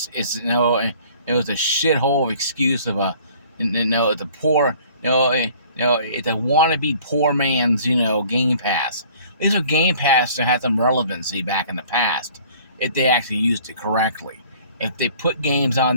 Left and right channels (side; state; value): both; inverted; correlation -0.52